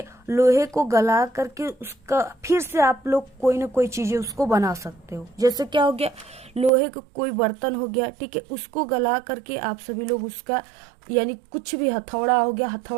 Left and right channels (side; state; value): left; drops out; at 6.7 s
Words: लोहे को गला करके उसका फिर से आप लोग कोई ना कोई चीजें उसको बना सकते हो। जैसे क्या हो गया, लोहे का कोई बर्तन हो गया, ठीक है, उसको गला करके आप सभी लोग उसका यानी कुछ भी, हथौड़ा हो गया,